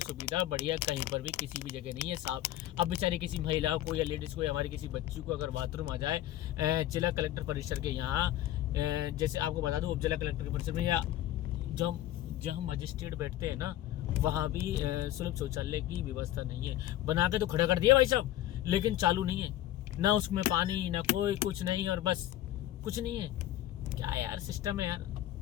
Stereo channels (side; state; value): right; quieter; 13.8 dB